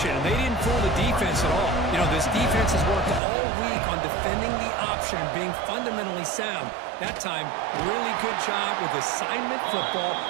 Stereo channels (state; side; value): drops out; left; at 3.2 s